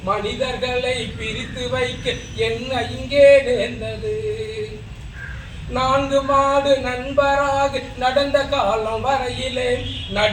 மனிதர்களை பிரித்து வைக்க என்ன இங்கே நேர்ந்தது? 4 மாடு நண்பராக நடந்த காலம் வரையிலே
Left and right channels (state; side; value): identical; both; correlation 1.00